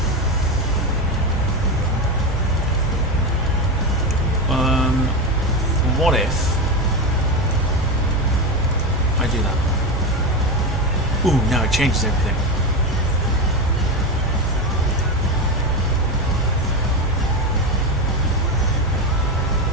What if I do that? Ooh, now it changes everything.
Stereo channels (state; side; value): normal; both; correlation 0.16